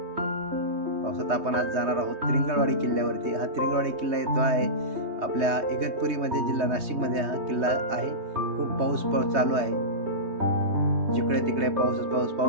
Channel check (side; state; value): left; late; 3.2 ms